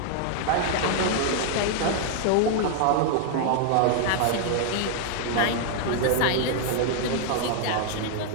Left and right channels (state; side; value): different; both; correlation 0.00